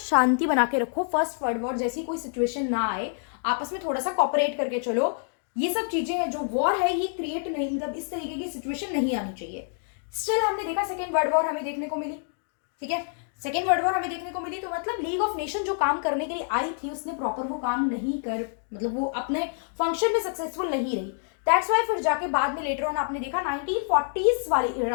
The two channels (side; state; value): right; silent; 60 dB below the other